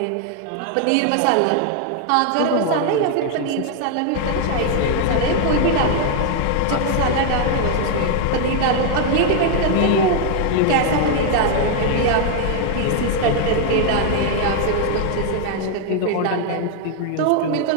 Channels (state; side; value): different; both; correlation 0.00